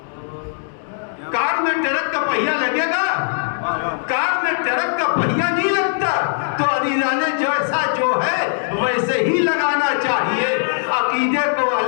کار میں ٹرک کا پہیا لگے گا؟ کار میں ٹرک کا پہیا نہیں لگتا۔ تو عزیزانے جیسا جو ہے ویسے ہی لگانا چاہیے، عقیدے کو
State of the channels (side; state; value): right; silent; 66 dB below the other